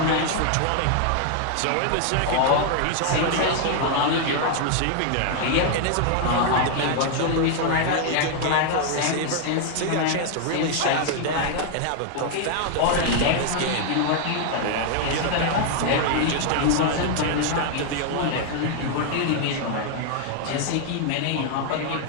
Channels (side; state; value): both; different; correlation 0.00